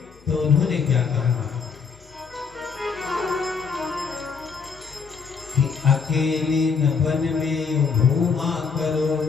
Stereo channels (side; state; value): right; quieter; 5.6 dB